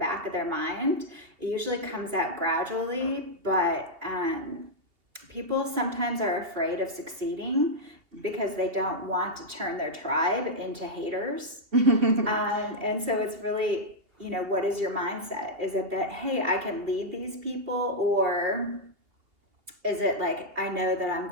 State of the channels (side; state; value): left; late; 2.8 ms